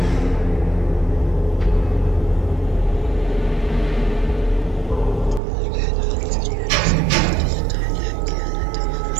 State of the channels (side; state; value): left; drops out; at 5.4 s